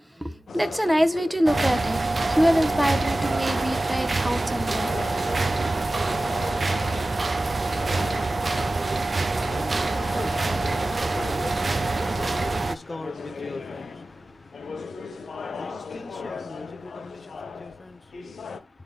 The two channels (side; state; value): both; normal; correlation 0.96